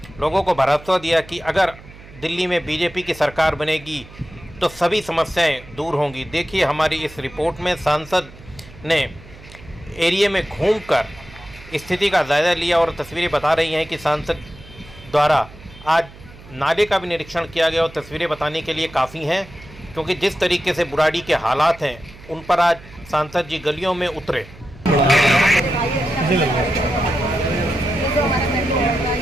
लोगों को भरोसा दिया कि अगर दिल्ली में बीजेपी की सरकार बनेगी तो सभी समस्याएं दूर होंगी। देखिए हमारी इस रिपोर्ट में सांसद ने एरिया में घूमकर स्थिति का जायजा लिया और तस्वीरें बता रही हैं कि सांसद द्वारा आज नाले का भी निरीक्षण किया गया और तस्वीरें बताने के लिए काफ़ी हैं, क्योंकि जिस तरीके से बुराड़ी के हालात हैं उन पर आज सांसद जी गलियों में उतरे।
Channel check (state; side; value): noise; right; hum, 20 dB below the sound